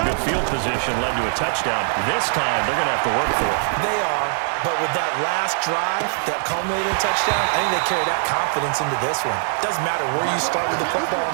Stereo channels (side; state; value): left; silent; 55 dB below the other